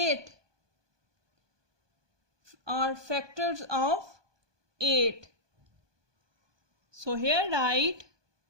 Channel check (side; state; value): left; late; 1.2 ms